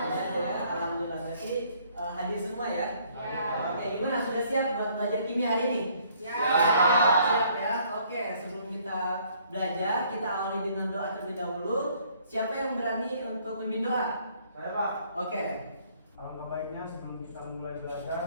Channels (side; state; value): both; inverted; correlation -0.63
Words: ya, alhamdulillah. Berarti hadir semua ya? Oke, gimana? Sudah siap buat belajar kimia hari ini? Siap ya. Oke, sebelum kita belajar, kita awali dengan doa terlebih dahulu. Siapa yang berani untuk memimpin doa? Saya, Pak. Oke. Alangkah baiknya sebelum kita mulai